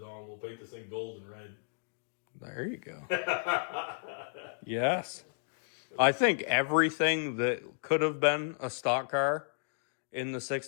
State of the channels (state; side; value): silent; right; digital silence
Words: We'll paint this thing gold and red. There you go. Yes. I think everything that could have been a stock car in the